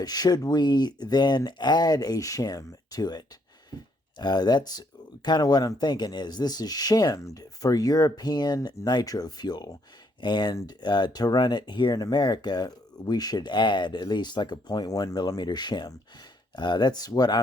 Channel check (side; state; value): both; normal; correlation 0.71